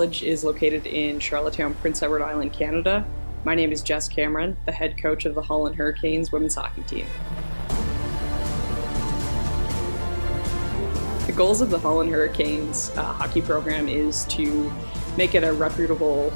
is located in Charlottetown, Prince Edward Island, Canada. My name is Jess Cameron, the head coach of the Holland Hurricanes women's hockey team. The goals of the Holland Hurricanes hockey program is to make it a reputable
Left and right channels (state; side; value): inverted; both; correlation -1.00